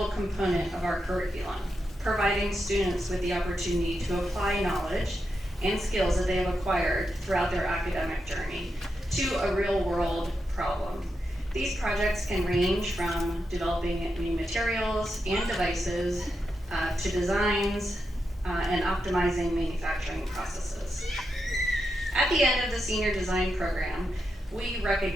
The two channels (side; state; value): both; normal; correlation 0.86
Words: component of our curriculum, providing students with the opportunity to apply knowledge and skills that they have acquired throughout their academic journey to a real-world problem. These projects can range from developing new materials and devices to designs and optimizing manufacturing processes. At the end of the senior design program, we